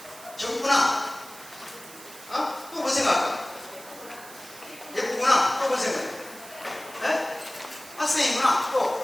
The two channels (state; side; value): noise; right; hiss, 17 dB below the sound